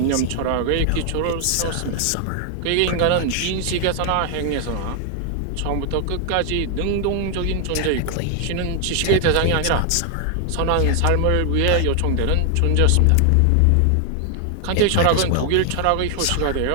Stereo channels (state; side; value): different; both; correlation 0.00